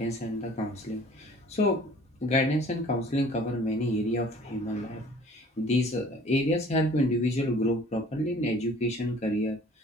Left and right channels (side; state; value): both; normal; correlation 0.51